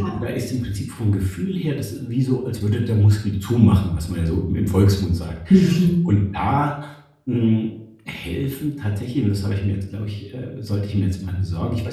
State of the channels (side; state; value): both; identical; correlation 1.00